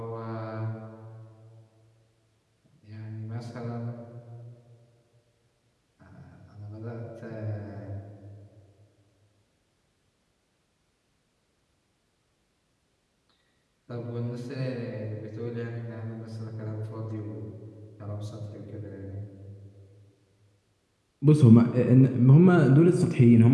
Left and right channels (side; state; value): both; identical; correlation 1.00